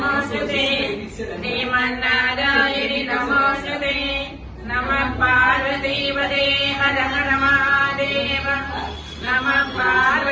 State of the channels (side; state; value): both; identical; correlation 1.00